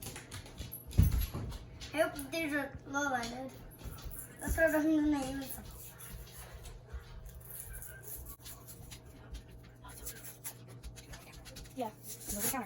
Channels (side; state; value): both; identical; correlation 1.00